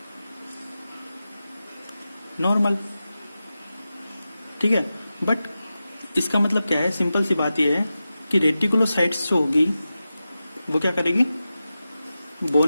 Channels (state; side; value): inverted; both; correlation -0.93